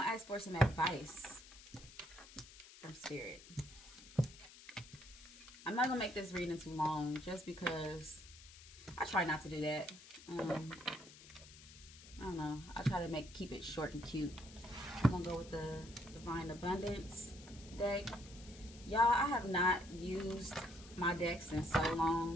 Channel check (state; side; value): noise; left; hiss, 18 dB below the sound